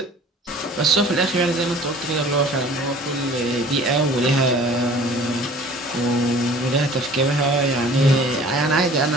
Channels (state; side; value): normal; both; correlation 0.48